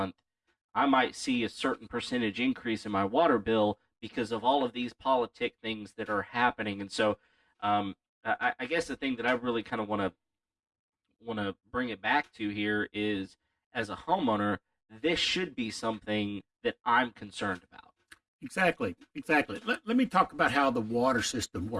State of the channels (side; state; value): both; identical; correlation 1.00